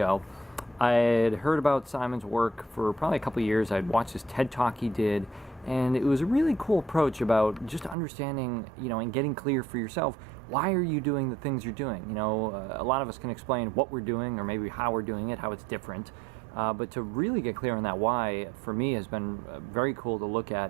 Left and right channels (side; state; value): left; drops out; at 8.0 s